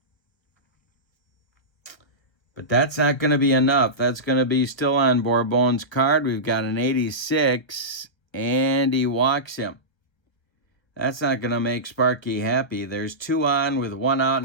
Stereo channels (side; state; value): right; late; 1.3 ms